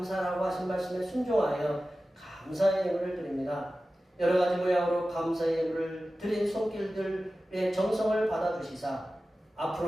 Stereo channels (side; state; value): both; normal; correlation 0.95